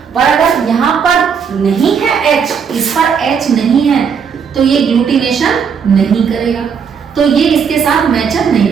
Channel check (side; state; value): left; quieter; 6.6 dB